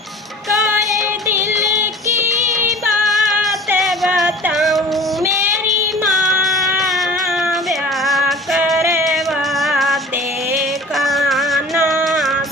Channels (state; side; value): normal; both; correlation 0.43